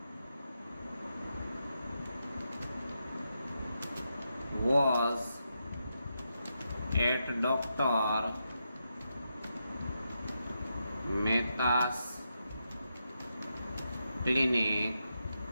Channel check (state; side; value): inverted; both; correlation -0.85